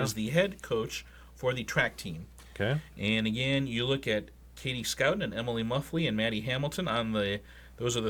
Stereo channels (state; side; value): identical; both; correlation 1.00